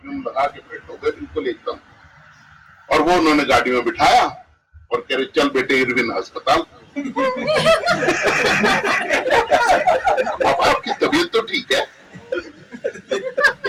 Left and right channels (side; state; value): both; identical; correlation 1.00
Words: लगा के फिट हो गए बिल्कुल एकदम। और वो उन्होंने गाड़ी में बिठाया और कह रहे चल बेटे इरविन अस्पताल। पापा आपकी तबीयत तो ठीक है?